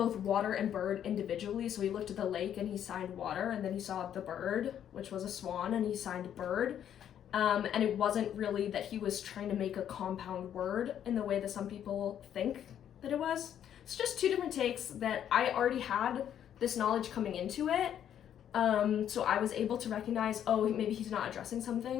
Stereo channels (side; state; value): right; quieter; 9.9 dB